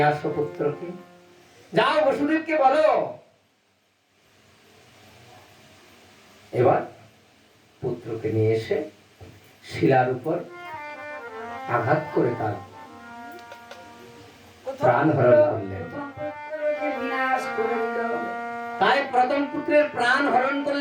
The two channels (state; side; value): identical; both; correlation 1.00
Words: আসো পুত্রকে, যাও বসুদেবকে বলো। এবার পুত্রকে নিয়ে এসে শিলার উপর আঘাত করে তার প্রাণ হরণ করলেন। তাই প্রথম পুত্রের প্রাণ হরণ